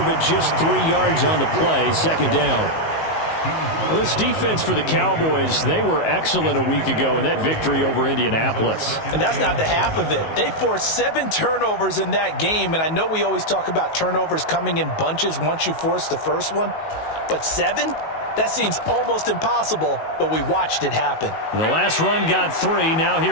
but just 3 yards on the play. Second down. Well, this defense for the Cowboys, they were excellent a week ago in that victory over Indianapolis. And that's not the half of it. They forced 7 turnovers in that game, and I know we always talk about turnovers coming in bunches once you force the first one, but 7? That seems almost impossible, but we watched it happen. The last run got 3. Now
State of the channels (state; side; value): late; right; 19 ms